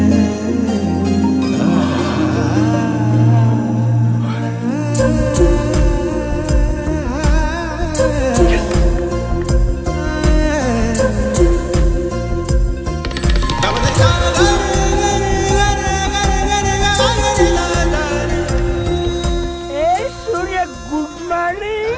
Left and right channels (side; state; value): both; identical; correlation 1.00